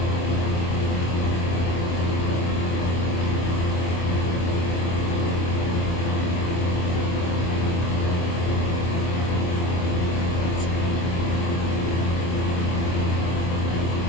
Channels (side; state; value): right; late; 24 ms